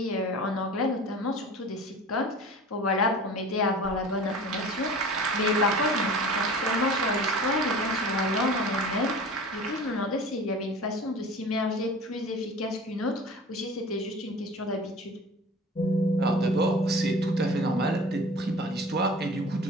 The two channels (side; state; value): both; normal; correlation 0.39